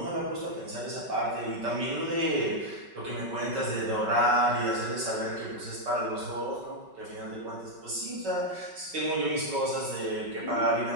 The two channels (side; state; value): left; late; 5.3 ms